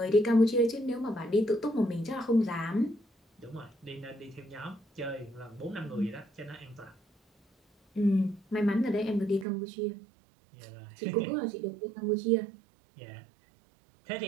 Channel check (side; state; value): left; drops out; at 9.5 s